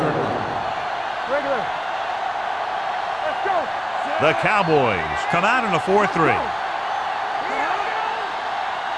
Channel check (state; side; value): identical; both; correlation 1.00